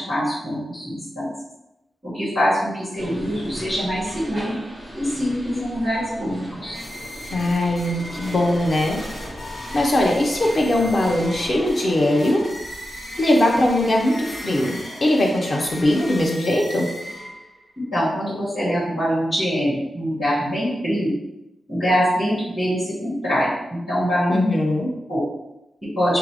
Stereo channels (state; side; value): normal; both; correlation 0.90